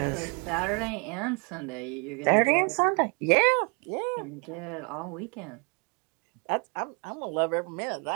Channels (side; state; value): left; quieter; 34.1 dB